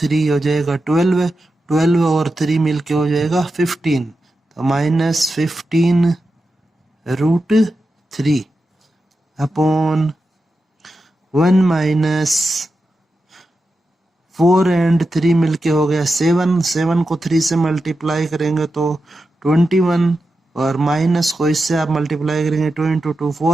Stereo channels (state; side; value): normal; both; correlation 0.90